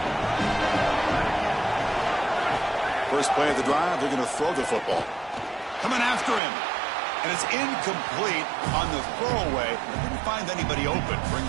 First play of the drive, they're going to throw the football. Coming after him. And it's incomplete on the throwaway. Didn't find anybody open.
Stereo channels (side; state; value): left; drops out; at 6.4 s